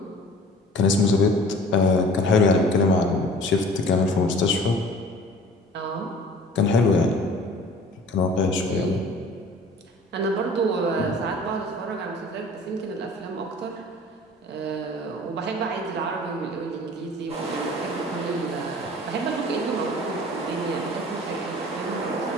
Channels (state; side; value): normal; both; correlation 0.46